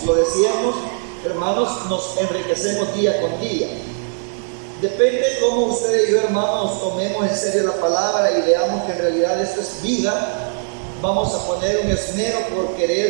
hermanos, nos enriquecemos día con día. Depende cómo ustedes y yo, hermanos, tomemos en serio la palabra y veamos que en realidad esto es vida. Vamos a poner un esmero por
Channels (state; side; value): silent; left; 66 dB below the other